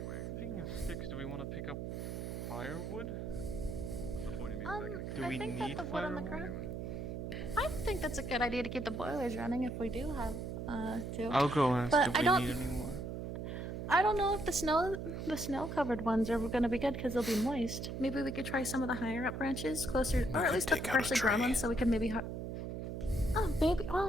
Speaking of sticks, do we want to pick up firewood? What's the point of me I Do we think that need the wood on the firewood? ground. I think that's a good idea to keep the boilers running if we do have to. I'll go ask But if I we don't. need any more. I don't know if the snow-covered ones are gonna be good because they'll be moist. Maybe we could try some of the higher up branches, closer, or at least the freshly grown ones, so we can maybe. Oh, maybe.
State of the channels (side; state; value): right; noise; hum, 5 dB below the sound